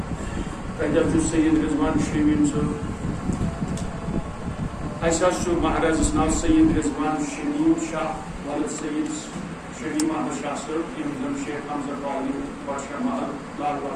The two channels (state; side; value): identical; both; correlation 1.00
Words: تتہِ حظ چھُ سید رضوان شمیٖم صٲب اسہ مہارازس ناو سید رضوان شمیم شاہ ولد سید شمیم احمد شاہ صاحب یم زن شیخ حمزہ کالونی بادشاہ محل لال